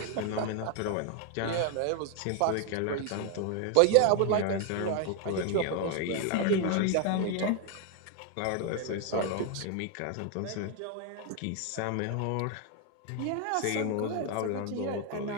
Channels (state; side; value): different; both; correlation 0.01